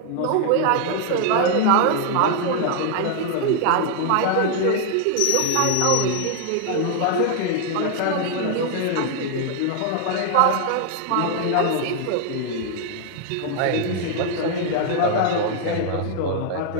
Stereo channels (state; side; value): different; both; correlation 0.00